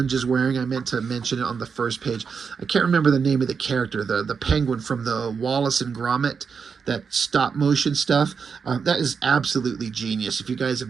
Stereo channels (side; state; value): left; quieter; 5.9 dB